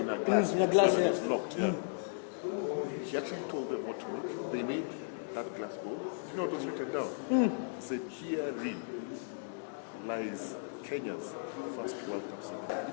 a glass? In a glass, It's locked, He actually told them what to make. They made that glass bowl. Do you know what was written down? He said, herein lies Kenya's first World Cup ceremony.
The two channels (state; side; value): silent; right; digital silence